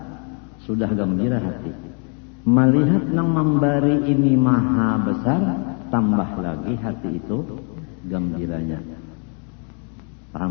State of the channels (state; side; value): quieter; right; 39.4 dB